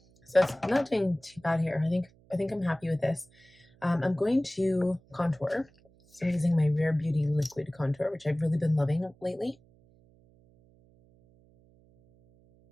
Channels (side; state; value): right; noise; hum, 30 dB below the sound